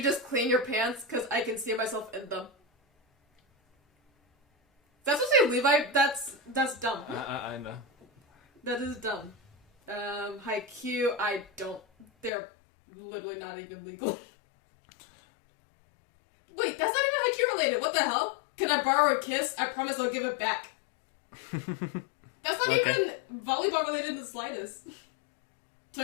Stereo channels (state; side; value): drops out; right; at 12.3 s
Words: just clean your pants? Cause I can see myself in them. That's what say Levi, that's dumb. I know. That is dumb. Haikyuu, I don't, they're literally not even legal. Wait, that's not even Haikyuu related, what the hell? Can I borrow a kiss? I promise I'll give it back. That's not even volleyball related in the slightest.